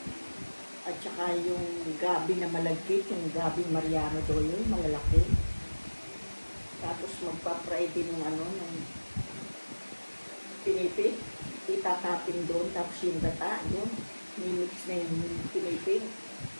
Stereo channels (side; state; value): both; inverted; correlation -1.00